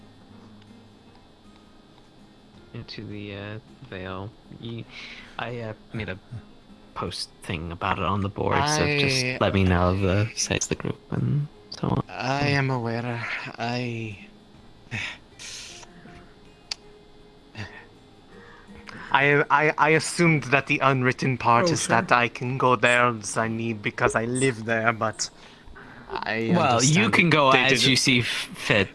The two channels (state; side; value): identical; both; correlation 1.00